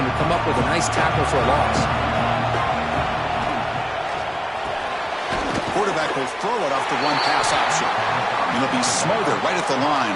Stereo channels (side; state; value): both; identical; correlation 1.00